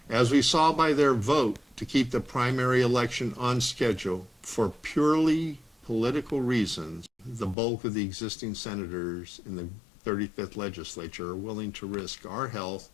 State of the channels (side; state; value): right; drops out; at 7.6 s